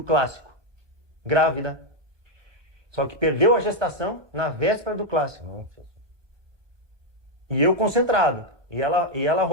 clássico, grávida. Só que perdeu a gestação na véspera do clássico. E eu concentrado. E ela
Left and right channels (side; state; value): left; late; 1.2 ms